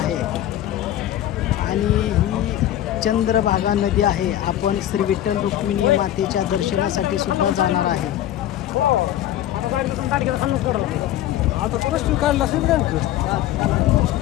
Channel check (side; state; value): right; quieter; 12.6 dB